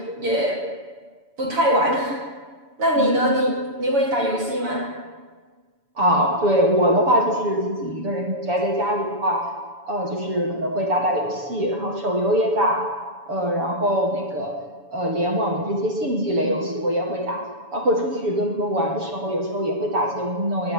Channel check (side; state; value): left; late; 7.0 ms